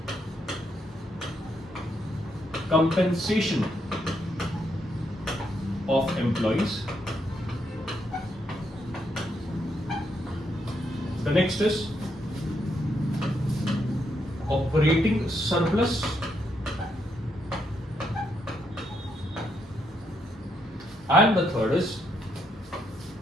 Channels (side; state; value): both; normal; correlation 0.78